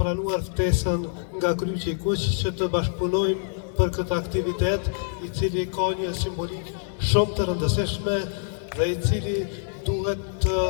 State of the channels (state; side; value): silent; right; 61 dB below the other